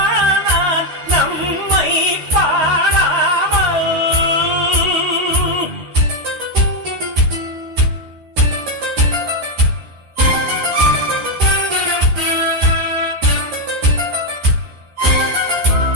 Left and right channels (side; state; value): left; late; 13 ms